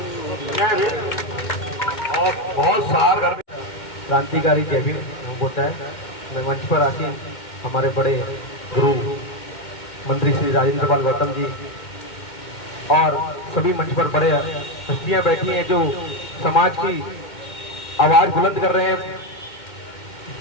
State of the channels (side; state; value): right; late; 2.1 ms